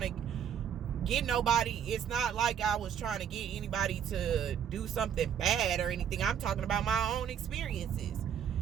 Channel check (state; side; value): quieter; left; 8.6 dB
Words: to get nobody. It's not like I was trying to get anybody to do something bad or anything. I'm talking about my own experiences.